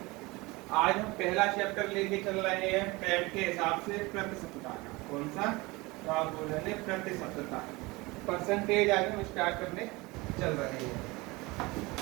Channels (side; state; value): left; quieter; 23.2 dB